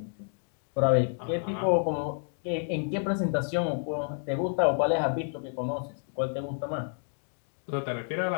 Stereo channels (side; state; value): right; silent; 55 dB below the other